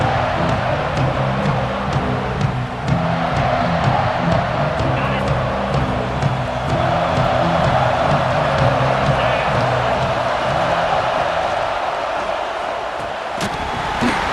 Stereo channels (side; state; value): both; identical; correlation 1.00